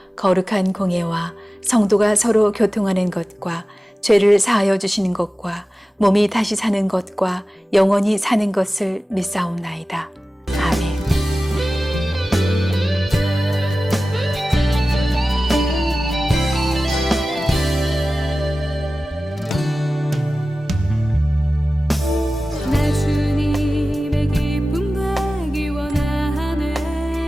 거룩한 공예와 성도가 서로 교통하는 것과 죄를 사하여 주시는 것과 몸이 다시 사는 것과 영원히 사는 것을 믿사옵나이다. 아멘. 나 주님의 기쁨 되기 원하네.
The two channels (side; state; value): both; normal; correlation 0.96